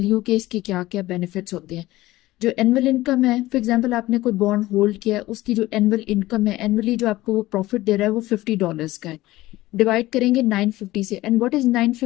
you कि इसके क्या क्या बेनिफिट्स होते हैं। जो एनुअल इनकम है, फॉर एग्जांपल आपने कोई बॉन्ड होल्ड किया है, उसकी जो एनुअल इनकम है, एनुअली जो आपको वो प्रॉफिट दे रहा है वो $50 का है। डिवाइड करेंगे 950 से। And what is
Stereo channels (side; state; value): right; quieter; 17.5 dB